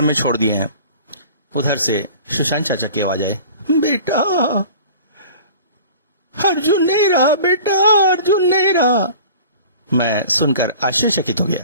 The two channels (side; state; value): both; inverted; correlation -0.43